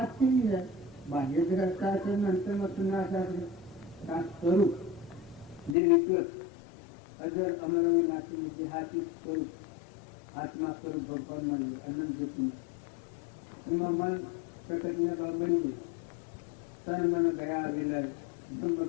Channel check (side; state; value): right; drops out; at 5.8 s